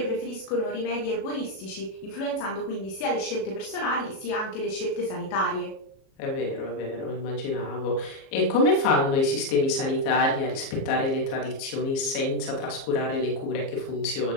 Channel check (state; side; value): late; right; 37 ms